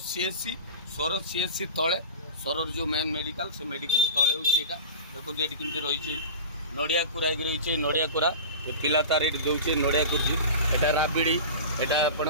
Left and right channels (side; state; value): both; inverted; correlation -0.32